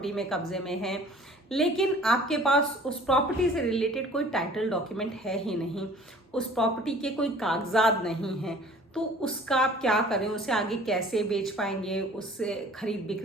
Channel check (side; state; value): both; normal; correlation 0.49